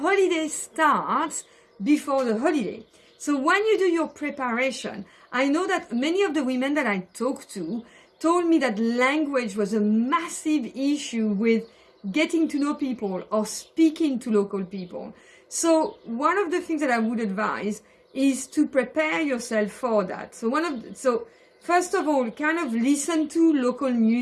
starts before the holiday. So when you do your preparation, I know that many of the women that I talked to told me that language was a massive issue with getting to know people or speaking to local people. So one of the things that I would advise is to prepare yourself for that. So first of all, kind of listen to local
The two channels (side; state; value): both; identical; correlation 1.00